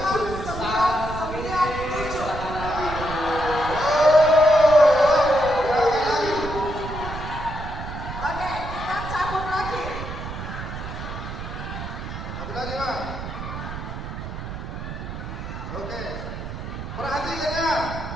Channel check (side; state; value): right; noise; rumble, 8 dB below the sound